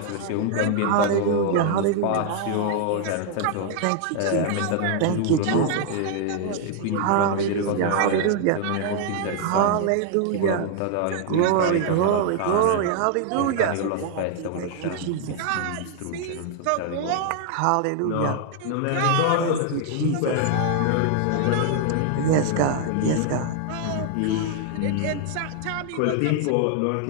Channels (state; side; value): different; both; correlation 0.00